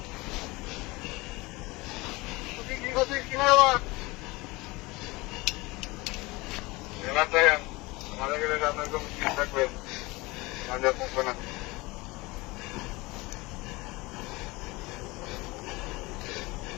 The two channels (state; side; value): quieter; right; 22.8 dB